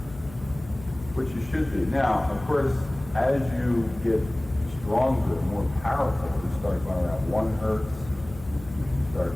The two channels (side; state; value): left; noise; hum, 16 dB below the sound